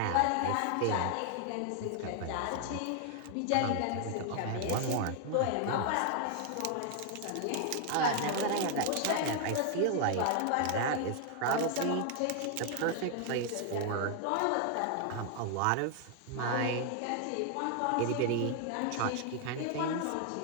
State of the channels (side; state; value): both; different; correlation 0.00